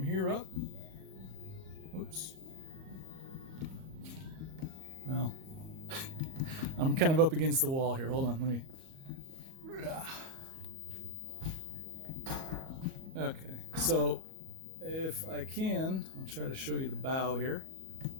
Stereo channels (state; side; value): late; left; 37 ms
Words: up, whoops. Well, I'm kind of up against the wall here. Hold on, let me. Okay, so if I can, I'll try to show you the bow here.